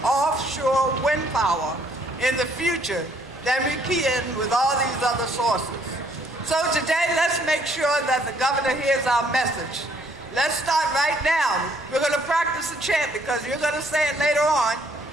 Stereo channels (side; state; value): both; normal; correlation 0.65